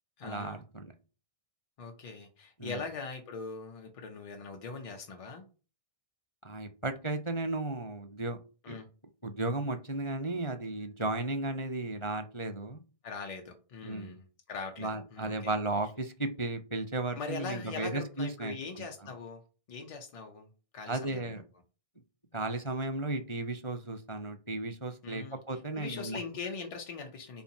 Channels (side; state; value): right; late; 1.6 ms